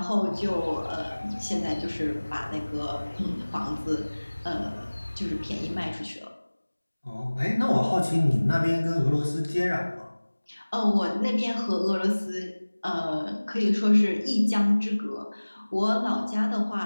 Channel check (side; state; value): both; inverted; correlation -1.00